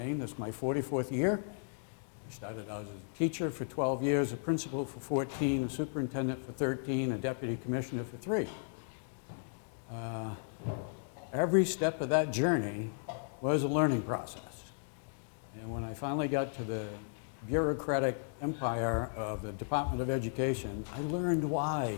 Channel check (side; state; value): right; silent; digital silence